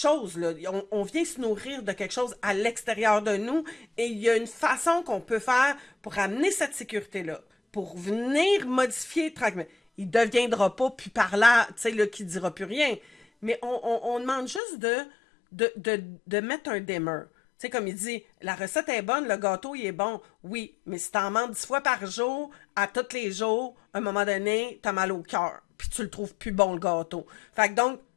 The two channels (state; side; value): drops out; right; at 14.6 s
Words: là. On vient se nourrir de quelque chose à l'extérieur de nous, et il y a une façon qu'on peut faire pour amener cette sécurité-là, pour venir modifier tranquillement. Il ne deviendra pas plus parlant, tu sais, là, qui ne dira plus rien. Mais on demande juste de mettre un dimmer. Tu sais, comme il dit, la recette est bonne, le gâteau, il est bon. Oui, mais si t'en manges 10 fois par jour, à tous les jours, à un moment donné, t'as mal au cœur. Puis tu le trouves plus bon, le gâteau. Fait que donc,